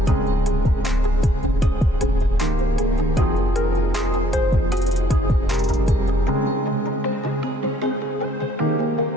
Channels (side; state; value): both; normal; correlation 0.63